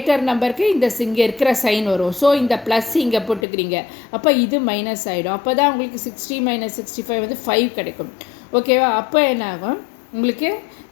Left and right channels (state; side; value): drops out; right; at 3.5 s